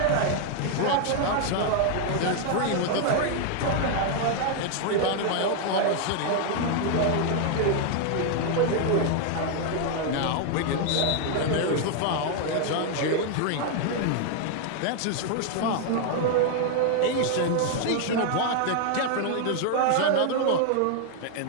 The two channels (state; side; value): different; both; correlation 0.00